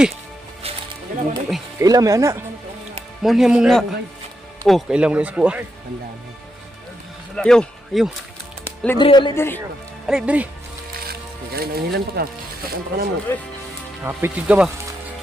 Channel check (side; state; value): both; normal; correlation 0.83